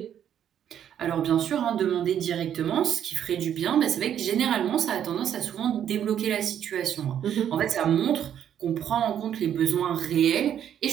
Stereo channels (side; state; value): left; quieter; 9.7 dB